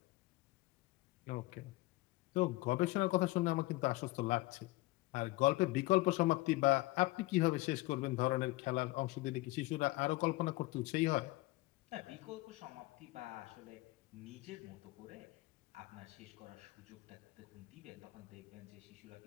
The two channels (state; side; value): quieter; right; 20.2 dB